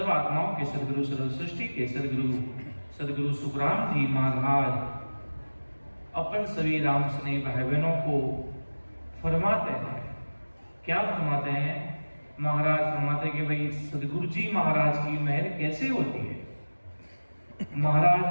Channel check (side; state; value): both; inverted; correlation -1.00